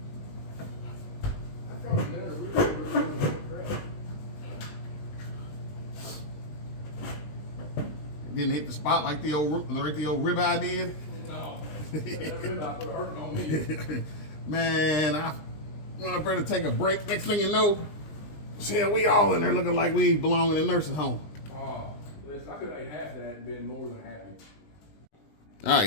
Didn't hit the spot like the old ribeye did. No, that ribeye put a hurting on me. Man, I went up there to take a break. Next thing you know, shit, we all in there looking like we belong in a nursing home. Oh, listen, I could have ate half of that and been more than happy. All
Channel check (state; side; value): late; right; 20 ms